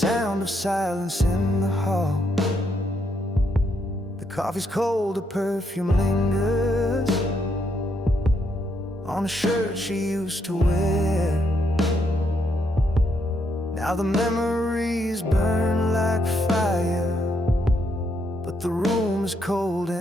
of silence in the hall. The coffee's cold, the perfume lingers on a shirt she used to wear. Now the memories burn like fire, but the room is cold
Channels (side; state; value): both; normal; correlation 0.76